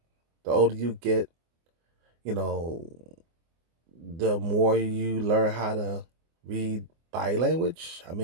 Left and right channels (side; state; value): left; late; 24 ms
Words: older you get, you know, the more you learn how to read body language. I